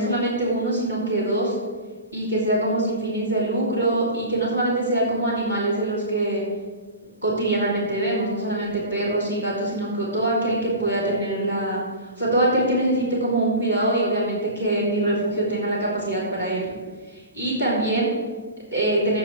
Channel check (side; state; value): both; inverted; correlation -0.32